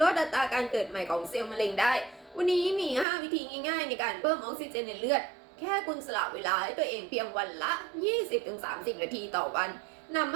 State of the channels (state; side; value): drops out; left; at 3.1 s